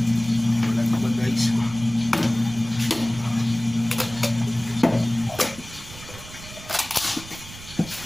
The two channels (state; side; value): noise; right; rumble, 16 dB below the sound